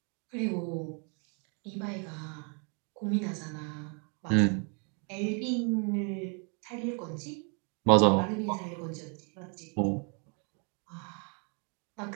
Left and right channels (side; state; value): left; quieter; 37.6 dB